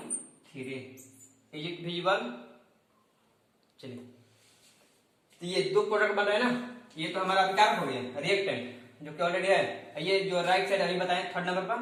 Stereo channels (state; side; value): identical; both; correlation 1.00